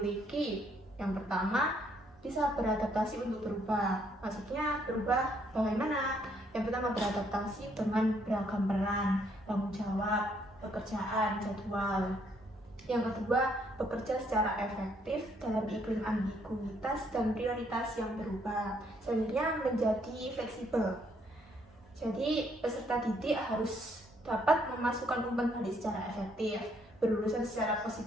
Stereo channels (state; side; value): normal; both; correlation 0.69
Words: yang pertama bisa beradaptasi untuk berubah. Maksudnya berubah bagaimana? Yang pertama beradaptasi dengan beragam peran, tanggung jawab, pekerjaan, jadwal. Yang kedua, bekerja secara efektif dalam iklim ambiguitas dan prioritas yang berubah. Selanjutnya menjadi fleksibel. Jadi peserta didik harus dapat memasukkan umpan balik secara efektif, berurusan secara